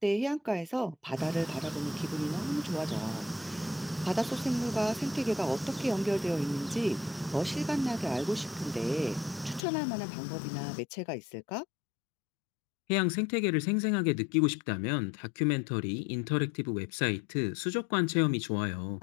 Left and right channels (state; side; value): drops out; right; at 9.6 s